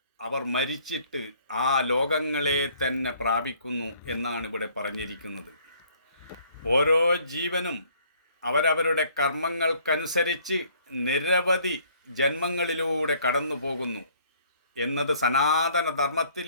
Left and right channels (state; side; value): inverted; both; correlation -0.60